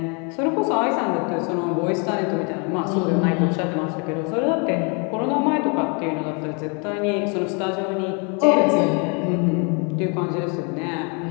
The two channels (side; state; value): right; quieter; 35.0 dB